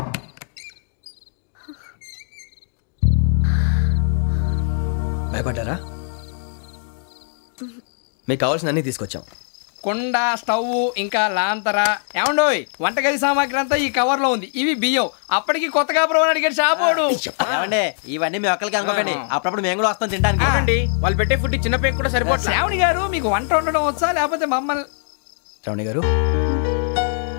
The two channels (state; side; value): silent; right; digital silence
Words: భయపడ్డారా? మీకు కావాల్సిన అన్ని తీసుకొచ్చాం. కుండ, స్టవ్, ఇంకా లాంతర. ఏమండోయ్, వంటగది సామాగ్రి అంతా ఈ కవర్ లో ఉంది. ఇవి బియ్యం. అప్పటికి కొత్తగా బ్రౌన్ అడిగాడు షాపోడు. ఏమండి, ఇవన్నీ మీ ఒక్కరికి అనుకోకండి, అప్పుడప్పుడు మేము కూడా వస్తాం తినడానికి. అవునండి, వాళ్ళు పెట్టే ఫుడ్ చిన్న పేరు కూడా సరిపోతుంది. శ్రావణి గారు, మీకు వంట వండడం వచ్చా లేకపోతే మమ్మల్ని? శ్రావణి గారు,